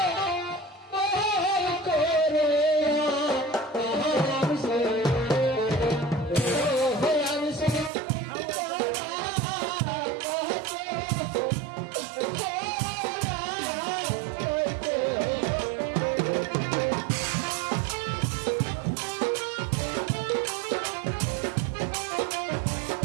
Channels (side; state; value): left; drops out; at 7.9 s